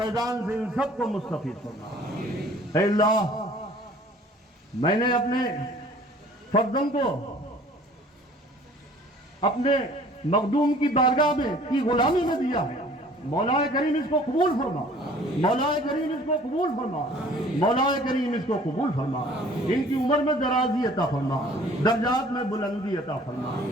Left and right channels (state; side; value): normal; both; correlation 0.52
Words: سے ان سب کو مستفید فرما۔ اے اللہ، میں نے اپنے فرزند کو اپنے مخدوم کی بارگاہ میں کی غلامی میں دیا ہے، مولا کریم اس کو قبول فرما، مولا کریم اس کو قبول فرما، مولا کریم اس کو قبول فرما، ان کی عمر میں درازی عطا فرما، درجات میں بلندی عطا فرما۔